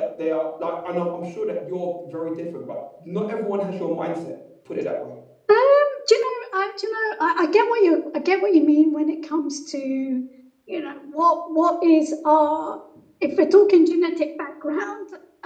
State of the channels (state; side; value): identical; both; correlation 1.00